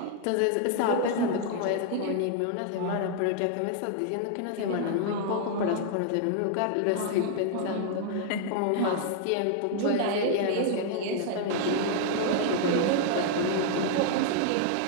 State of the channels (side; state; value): both; different; correlation 0.00